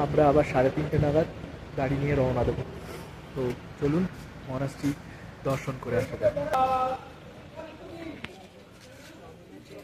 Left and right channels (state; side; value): identical; both; correlation 1.00